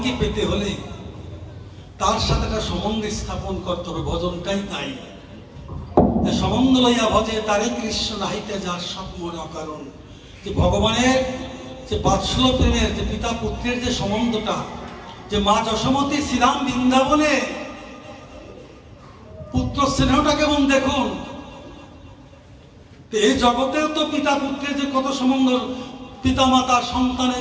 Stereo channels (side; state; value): both; identical; correlation 1.00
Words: পেতে হলে তার সাথে একটা সম্বন্ধ স্থাপন করতে হবে। ভজনটাই তাই, যে সম্বন্ধ লইয়া ভজে তারে কৃষ্ণ নাহিতে যার সব মনে অকারণ। যে ভগবানের যে বাৎসল্য প্রেমের, যে পিতা পুত্রের যে সম্বন্ধটা, যে মা যশোমতী শ্রীরাম বৃন্দাবনে পুত্র স্নেহটা কেমন দেখুন। এই জগতেও তো পিতা পুত্রের যে কত সম্বন্ধ, পিতা মাতা